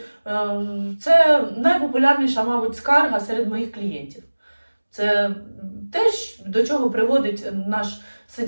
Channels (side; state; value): both; inverted; correlation -1.00